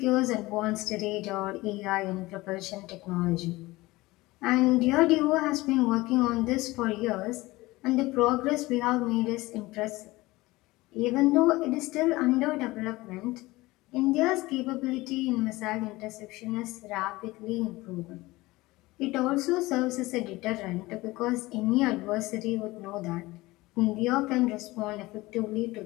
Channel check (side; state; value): right; quieter; 20.1 dB